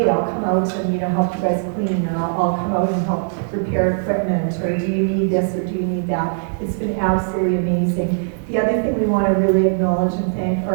I'll come out and help you guys clean, or I'll come out and help repair equipment, or do you need this or do you need that? It's been absolutely amazing. The other thing we want to really acknowledge and thank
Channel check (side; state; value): left; silent; 64 dB below the other